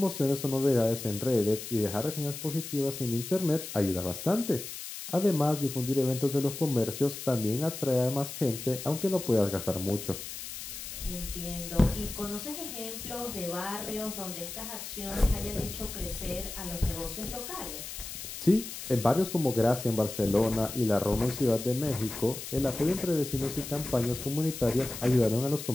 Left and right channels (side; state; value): left; noise; hiss, 9 dB below the sound